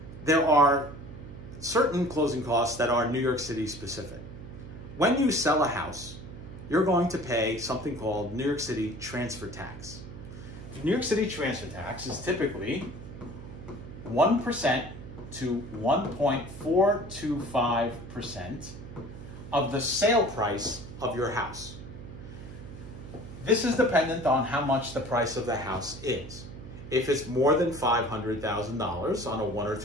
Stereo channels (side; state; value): right; noise; hum, 13 dB below the sound